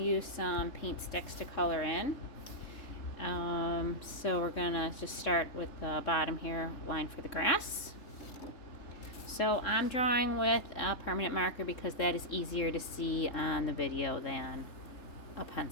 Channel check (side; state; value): right; late; 3.3 ms